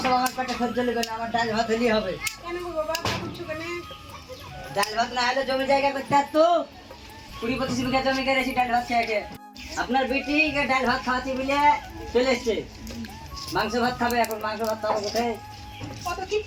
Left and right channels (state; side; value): identical; both; correlation 1.00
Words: সব আমার পেটে খরচ লেগে না, আমার ডাল ভাত হলেই হবে। কেন গো বাবা, তা করছো কেন? ডাল ভাত না হলে জমি জায়গা করতে আর তো 20-25 বিঘা জমি করেছি ডাল ভাত খেয়ে। আপনার বেটি ডাল ভাত খাওয়াচ্ছি বলে চলে এসছে, মাংস ভাত খাবে। এখন মাংস ভাত খাবো কোথায়? কত